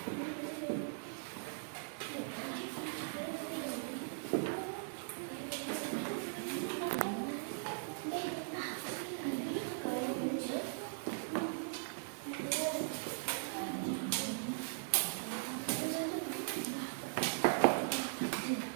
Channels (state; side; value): silent; left; digital silence